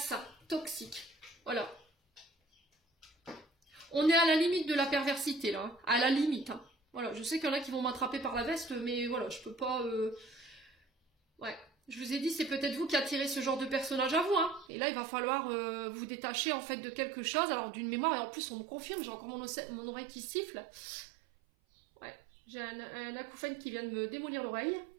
toxiques. Voilà. On est à la limite de la perversité, là. Hein. À la limite. Hein. Voilà, je sais qu'il y en a qui vont m'attraper par la veste, mais voilà, je peux pas... Ouais. Je vous ai dit, c'est peut-être vous qui attirez ce genre de personnage à vous. Hein. Et là, il va falloir vous détacher, en fait, de quelque chose. Alors, d'une mémoire, et en plus, on me confirme, j'ai encore mon oreille qui siffle. Ouais. J'ai un acouphène qui vient de me démolir l'oreille.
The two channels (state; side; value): drops out; left; at 14.7 s